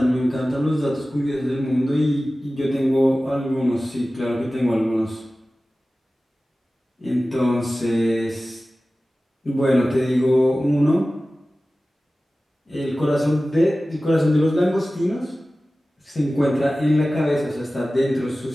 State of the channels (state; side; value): normal; both; correlation 0.96